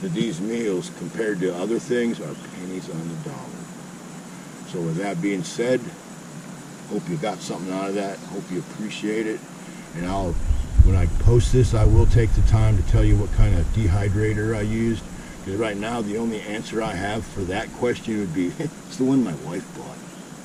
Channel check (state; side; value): identical; both; correlation 1.00